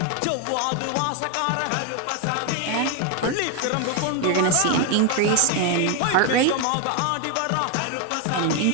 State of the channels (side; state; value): both; different; correlation 0.01